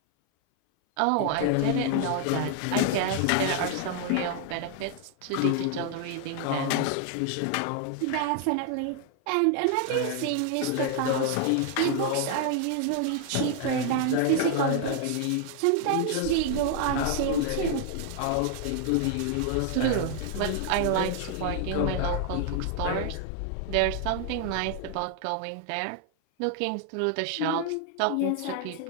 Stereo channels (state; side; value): different; both; correlation 0.00